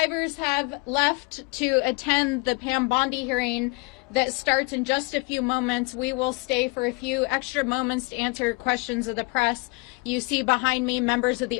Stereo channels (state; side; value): quieter; right; 27.1 dB